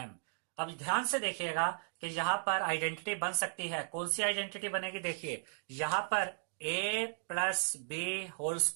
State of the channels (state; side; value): silent; left; digital silence